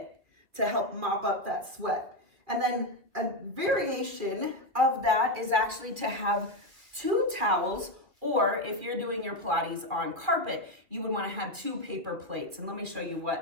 to help mop up that sweat. And then a variation of that is actually to have 2 towels, or if you're doing your Pilates on carpet, you would want to have 2 paper plates. And let me show you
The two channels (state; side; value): late; left; 2.5 ms